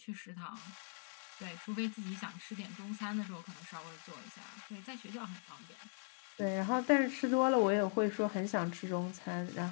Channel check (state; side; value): silent; right; 51 dB below the other